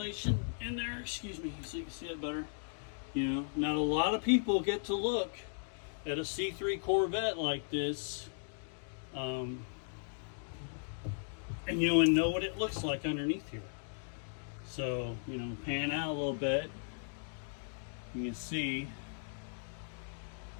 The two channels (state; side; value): silent; right; digital silence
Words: in there, excuse me, so you can see it better. You know, not a lot of people get to look at a C3 Corvette like this, and you know, and know what it looks like underneath here. So, you know, pan out a little bit, you can see